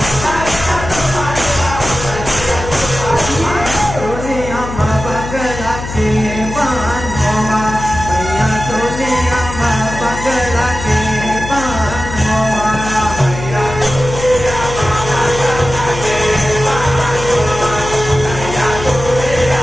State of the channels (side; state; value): left; noise; hum, 8 dB below the sound